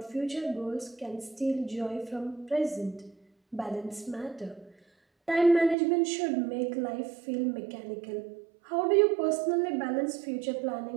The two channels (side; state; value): left; drops out; at 5.8 s